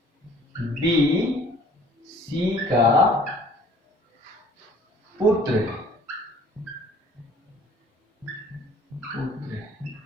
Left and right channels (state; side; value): normal; both; correlation 0.53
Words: बी सी का पुत्र है,